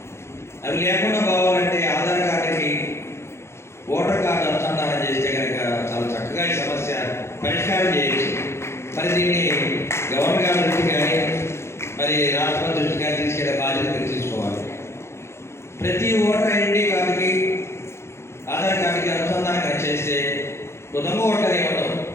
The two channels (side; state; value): right; late; 0.13 ms